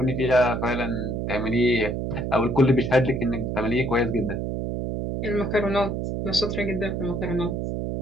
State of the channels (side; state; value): right; noise; hum, 2 dB below the sound